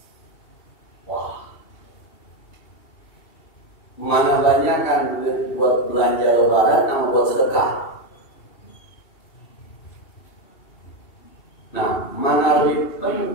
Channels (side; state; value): right; late; 2.8 ms